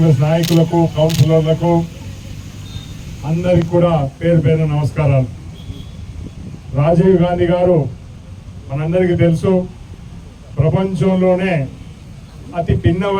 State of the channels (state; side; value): identical; both; correlation 1.00